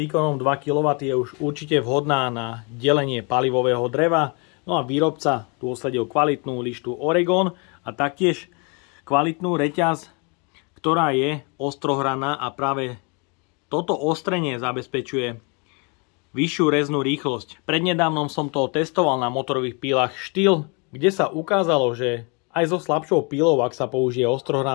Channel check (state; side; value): quieter; right; 32.8 dB